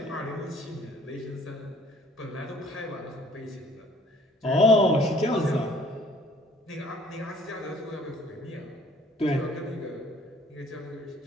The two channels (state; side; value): normal; both; correlation 0.56